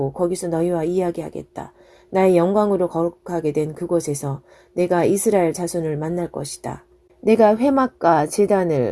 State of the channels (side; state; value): both; identical; correlation 1.00